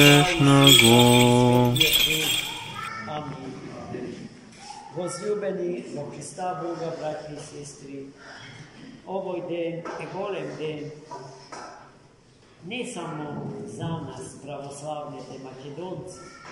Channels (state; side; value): identical; both; correlation 1.00